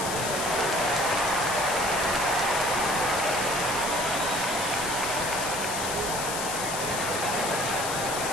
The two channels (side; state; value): left; noise; hiss, 4 dB below the sound